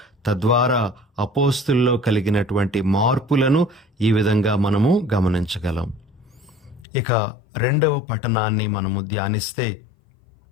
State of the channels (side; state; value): right; drops out; at 6.9 s